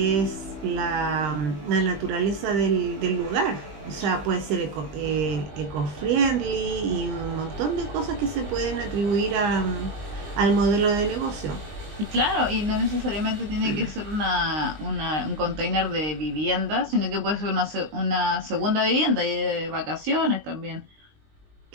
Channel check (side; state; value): left; late; 20 ms